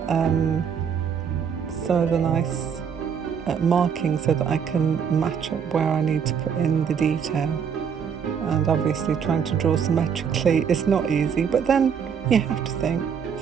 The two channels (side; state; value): left; quieter; 7.2 dB